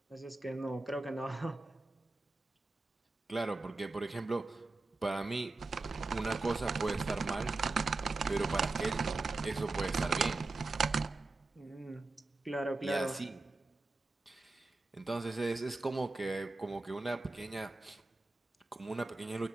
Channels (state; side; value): quieter; left; 3.3 dB